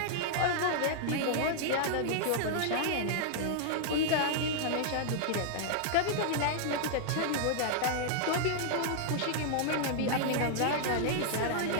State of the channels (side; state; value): both; different; correlation -0.01